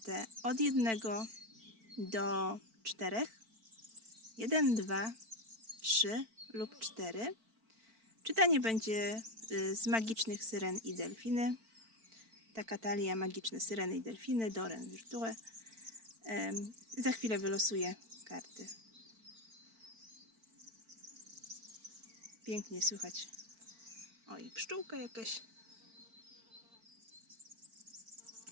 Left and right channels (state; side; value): late; left; 4.5 ms